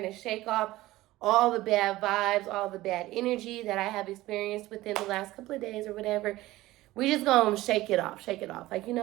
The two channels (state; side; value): quieter; left; 17.3 dB